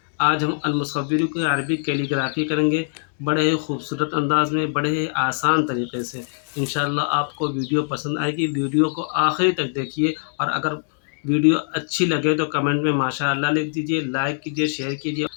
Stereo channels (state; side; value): silent; right; digital silence